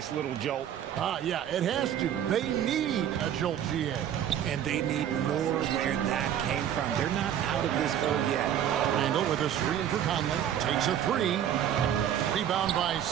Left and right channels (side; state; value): left; quieter; 10.1 dB